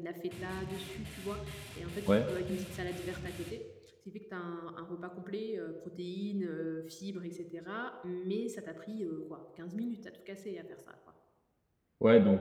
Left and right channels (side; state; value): both; identical; correlation 1.00